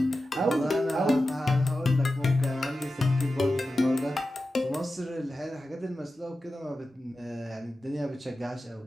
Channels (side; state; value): both; normal; correlation 0.93